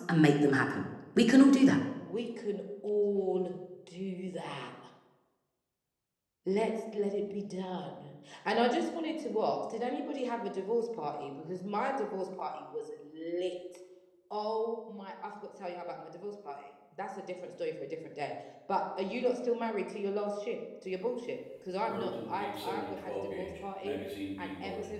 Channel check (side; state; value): both; identical; correlation 1.00